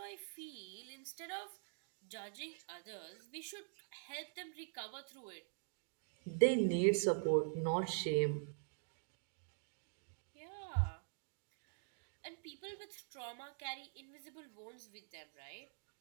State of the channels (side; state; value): left; silent; digital silence